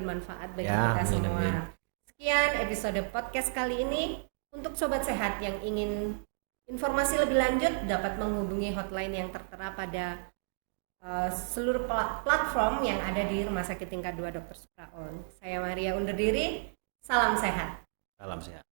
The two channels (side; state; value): left; silent; digital silence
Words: bagi kita semua. Sekian episode podcast kali ini. Untuk Sobat Sehat yang ingin informasi lebih lanjut dapat menghubungi hotline yang tertera pada seluruh platform yang ada di Rumah Sakit Tingkat 2 Dr. Supraun. Saya Maria undur diri. Salam sehat. Salam sehat.